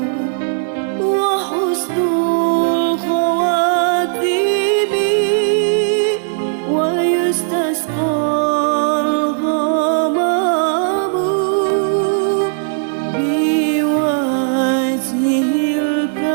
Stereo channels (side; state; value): left; silent; digital silence